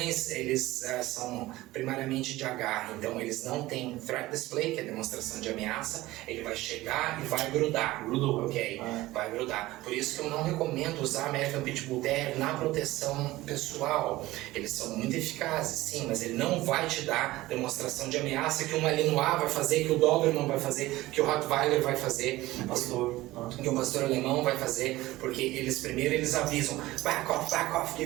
eles são primariamente de agarre, então eles não têm threat display, que é demonstração de ameaça, ele vai chegar e vai grudar. Grudou. Ok, vai grudar. Por isso que eu não recomendo usar American Pitbull Terrier na proteção pessoal. Eles são muito eficazes, sim, mas ele não vai te dar demonstração de ameaça que um Malinois vai fazer, que o Doberman vai fazer, que o Rottweiler vai fazer. Que o pastor alemão vai fazer, porque eles avisam, back off,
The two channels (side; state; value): left; quieter; 17.8 dB